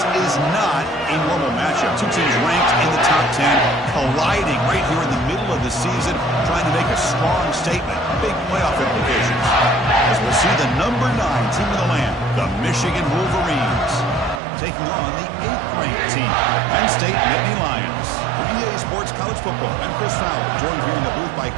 is not a normal matchup. Two teams ranked in the top 10, colliding right here in the middle of the season, trying to make a strong statement, big playoff implications. As we'll see the number 9 team in the land, the Michigan Wolverines, taking on the 8th-ranked team, the Penn State Nittany Lions. For EA Sports College Football, I'm Chris Fowler, joined here in the booth by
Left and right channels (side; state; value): left; drops out; at 14.4 s